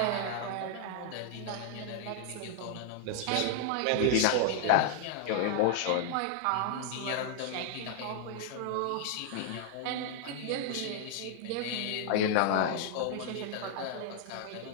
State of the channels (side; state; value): both; different; correlation -0.01